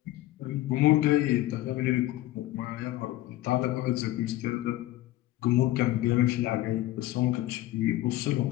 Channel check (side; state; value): right; quieter; 15.8 dB